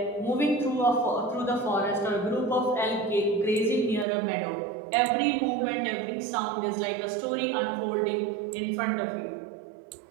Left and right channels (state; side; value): drops out; left; at 4.0 s